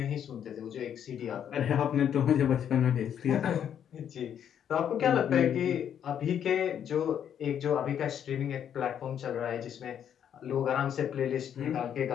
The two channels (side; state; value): right; quieter; 9.1 dB